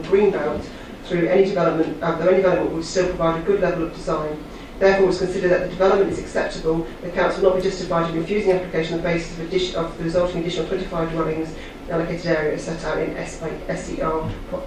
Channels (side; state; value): both; identical; correlation 1.00